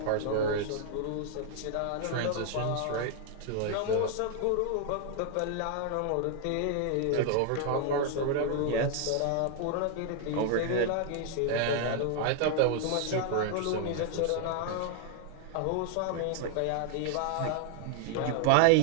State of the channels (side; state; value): both; different; correlation 0.00